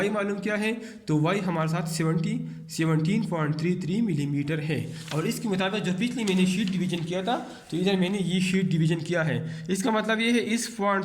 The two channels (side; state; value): both; identical; correlation 1.00